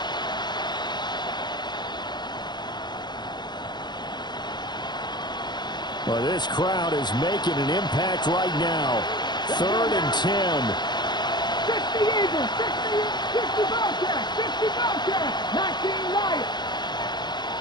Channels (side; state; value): right; late; 0.21 ms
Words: Well, this crowd is making an impact right now. 3rd and 10. 60 Eagles, 60 Bobcats, 60 Bobcats, 19 Lions.